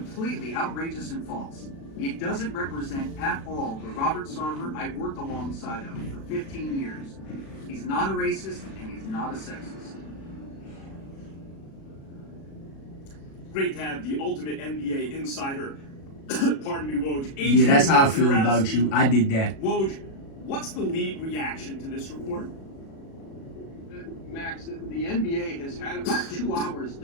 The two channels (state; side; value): late; right; 36 ms